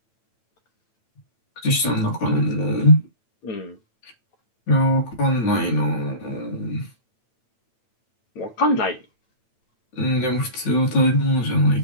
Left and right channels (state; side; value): late; right; 8.9 ms